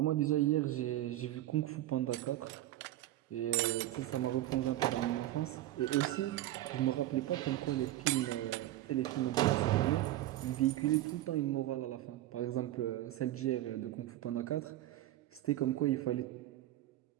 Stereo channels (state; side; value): quieter; left; 14.6 dB